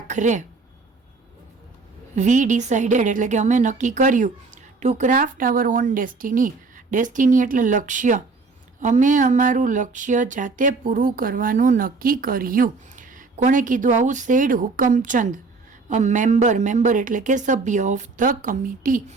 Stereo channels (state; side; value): quieter; left; 4.1 dB